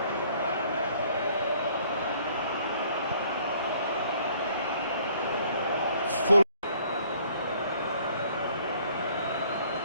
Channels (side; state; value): both; inverted; correlation -0.59